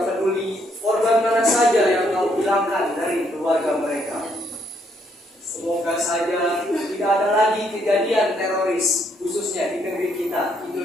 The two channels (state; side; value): normal; both; correlation 0.72